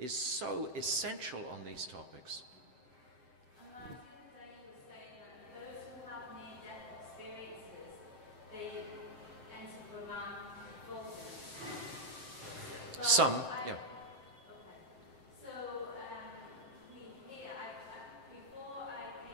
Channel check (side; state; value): left; late; 7.8 ms